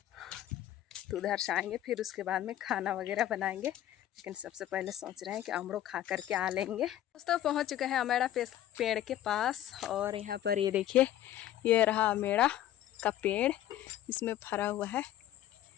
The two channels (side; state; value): right; quieter; 12.6 dB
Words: तो उधर से आएंगे फिर उसके बाद में खाना वगैरह बनाएंगे। लेकिन सबसे पहले सोच रहे हैं कि अमड़ो खा करके आ लेंगे। दोस्तों पहुँच चुके हैं अमेड़ा पेड़ के पास। और यहाँ पर ये देखिए, ये रहा अमेड़ा का पेड़, इसमें भरा हुआ है,